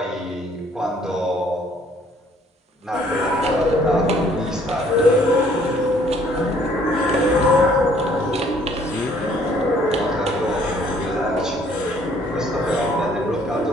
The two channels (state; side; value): normal; both; correlation 0.61